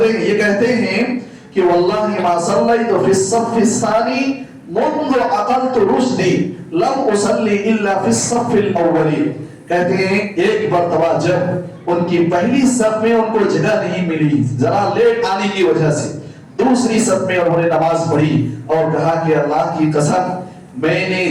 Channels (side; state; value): both; identical; correlation 1.00